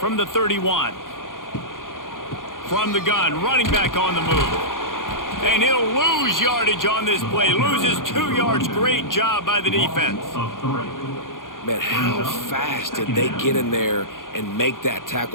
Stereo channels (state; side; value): late; right; 0.90 ms